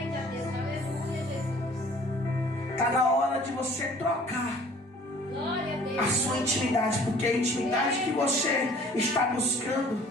Deus, aleluia, Jesus. Está na hora de você trocar Glória a Deus. a sua intimidade, porque a intimidade que você está buscando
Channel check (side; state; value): both; normal; correlation 0.52